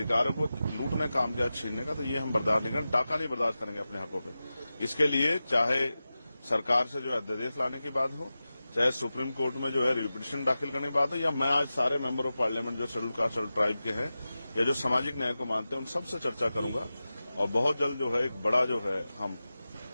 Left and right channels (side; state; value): both; inverted; correlation -0.94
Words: को लूटने का काम किया, छीनने का, तो ये हम बर्दाश्त नहीं करेंगे, डाका नहीं बर्दाश्त करेंगे अपने हकों पे। इसके लिए चाहे सरकार से जो है अध्यादेश लाने की बात हो, चाहे सुप्रीम कोर्ट में जो है रिपिटिशन दाखिल करने की बात हो, या मैं आज सारे मेंबर ऑफ पार्लियामेंट जो शेड्यूल कास्ट शेड्यूल ट्राइब के हैं या जो सामाजिक न्याय को मानते हैं उन सबसे चर्चा करूंगा और बहुत जल्द जो है एक बड़ा जो है हम